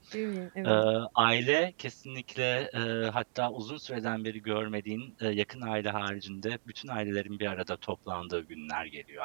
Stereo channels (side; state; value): left; silent; digital silence